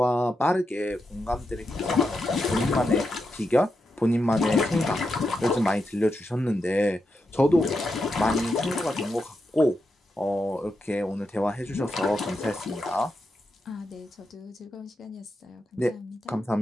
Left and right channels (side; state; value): both; normal; correlation 0.86